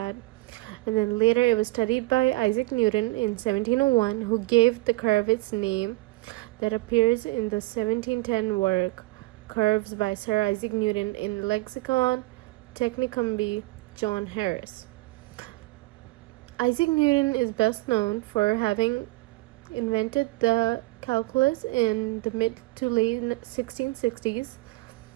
And then later it was studied by Isaac Newton in 1701, who gave the curve its name that appears in the 1710 work Curves by Sir Isaac Newton in Lexicon Technicum B. John Harris. Isaac Newton is best known for having invented the calculus in the mid to late 1660s,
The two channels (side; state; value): left; quieter; 21.8 dB